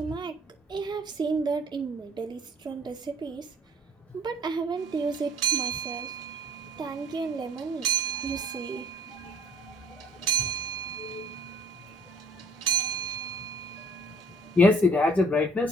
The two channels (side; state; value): both; normal; correlation 0.56